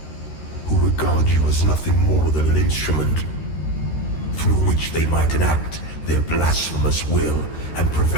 who regard you as nothing more than an instrument through which they might enact their blasphemous will and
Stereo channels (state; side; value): late; right; 13 ms